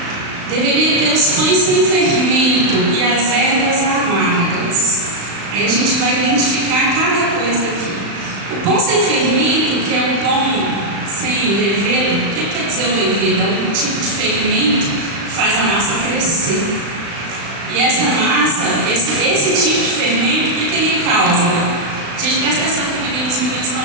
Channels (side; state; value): left; late; 35 ms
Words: Deveria ter os pães sem fermento e as ervas amargas. Aí a gente vai identificar cada coisa aqui. O pão sem fermento, que é o pão sem levedo, o que quer dizer o levedo? É um tipo de fermento que faz a massa crescer. E essa massa, esse tipo de fermento, o que ele causa? Gente, presta atenção que os meninos estão